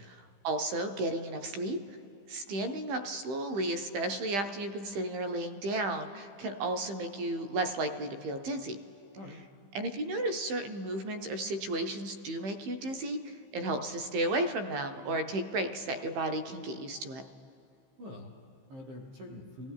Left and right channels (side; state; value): left; late; 15 ms